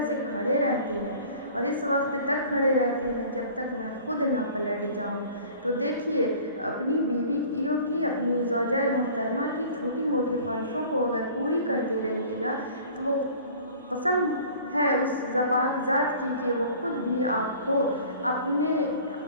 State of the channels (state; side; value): inverted; both; correlation -0.47